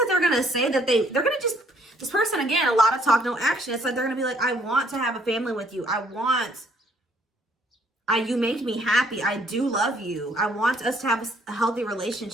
they're going to say that they're going to just, this person, again, a lot of talk, no action. It's like they're going to be like, I want to have a family with you. You make me happy. I do love you. I want us to have a healthy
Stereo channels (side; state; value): both; normal; correlation 0.64